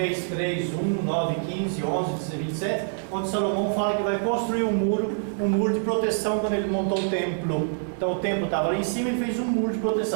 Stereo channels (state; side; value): silent; left; digital silence